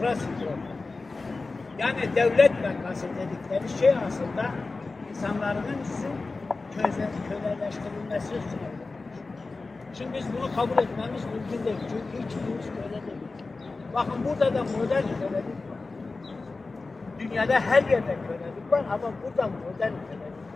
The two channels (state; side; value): quieter; right; 3.7 dB